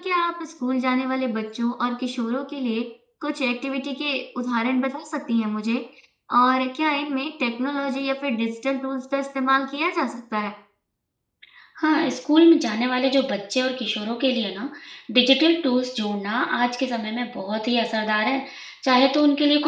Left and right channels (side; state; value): both; identical; correlation 1.00